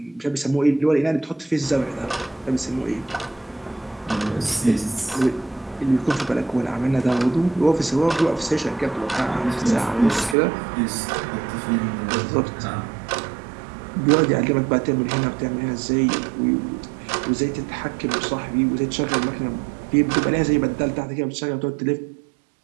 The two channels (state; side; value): drops out; left; at 10.4 s